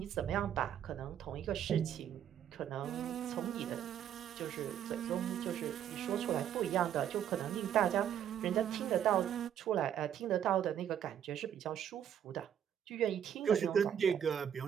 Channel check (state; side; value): quieter; left; 9.6 dB